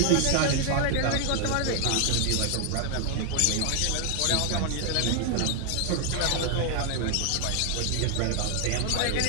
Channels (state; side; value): different; both; correlation 0.00